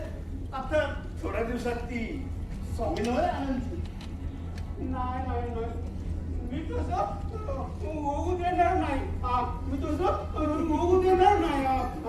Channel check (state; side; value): identical; both; correlation 1.00